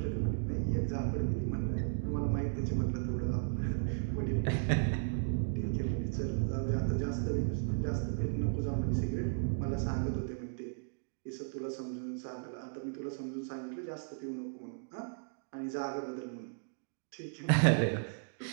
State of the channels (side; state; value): left; silent; digital silence